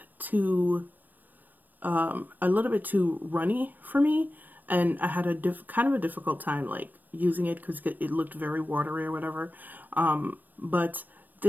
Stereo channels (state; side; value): late; left; 0.088 ms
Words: too runny for me, and I had a kind of a difficult time like using it because it looked very watery or whatever. But